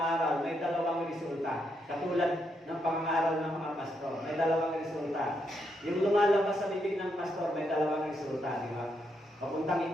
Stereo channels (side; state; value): both; normal; correlation 0.79